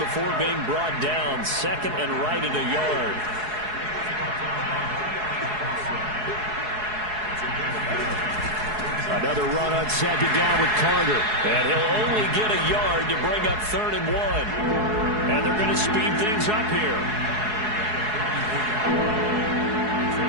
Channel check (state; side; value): late; left; 4.7 ms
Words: being brought down. Second and right at a yard. Another run on second down with Carter. And he'll only get a yard to bring up 3rd and 1. And they're going to speed things up here.